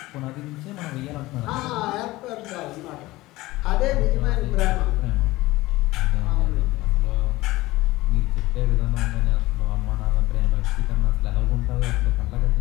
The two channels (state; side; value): quieter; right; 18.9 dB